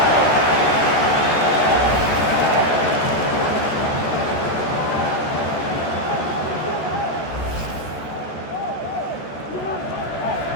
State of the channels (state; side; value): late; right; 14 ms